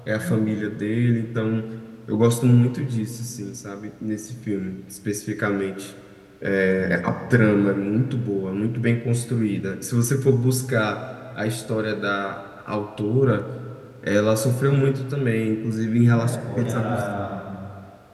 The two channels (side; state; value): both; identical; correlation 1.00